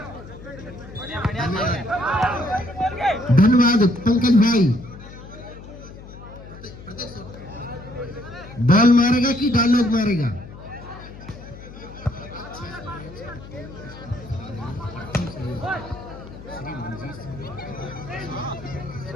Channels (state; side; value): noise; left; hum, 16 dB below the sound